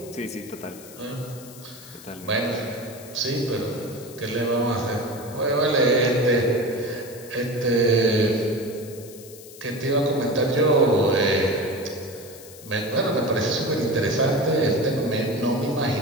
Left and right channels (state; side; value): noise; left; hiss, 18 dB below the sound